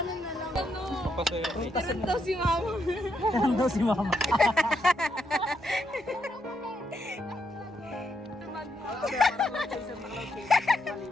na lang. Ano? Tirang daw si mama. Tirang daw si mama.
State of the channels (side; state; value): both; normal; correlation 0.78